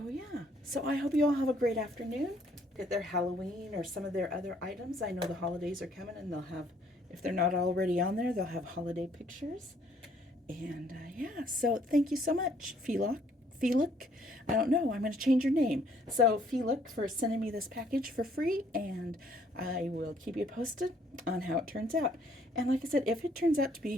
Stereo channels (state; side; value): normal; both; correlation 0.64